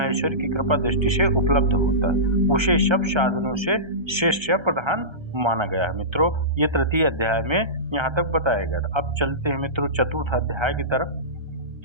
की कृपा दृष्टि से उपलब्ध होता है, उसे सब साधनों से श्रेष्ठ या प्रधान माना गया है मित्रों। ये तृतीय अध्याय में यहाँ तक बताया गया था। अब चलते हैं मित्रों चतुर्थ अध्याय की तरफ।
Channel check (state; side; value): late; left; 1.3 ms